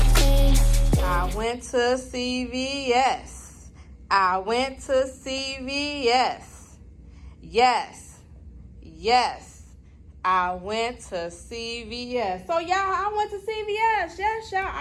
I went to CVS. I went to CVS. Yes. Yes. I went to CVS. So, y'all, I went to CVS. Yes, y'all.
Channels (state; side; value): identical; both; correlation 1.00